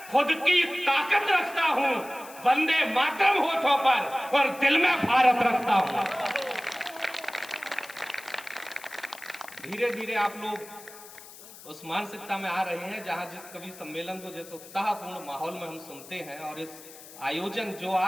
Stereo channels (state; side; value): noise; left; hiss, 18 dB below the sound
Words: खुद की ताकत रखता हूं, वंदे मातरम होठों पर और दिल में भारत रखता हूं। धीरे धीरे आप लोग उस मानसिकता में आ रहे हैं जहां जिस कवि सम्मेलन को जिस उत्साहपूर्ण माहौल में हम सुनते हैं, और इस आयोजन जो